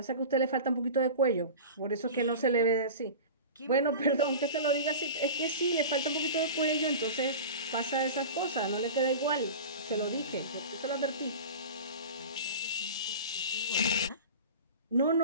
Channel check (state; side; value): inverted; both; correlation -0.33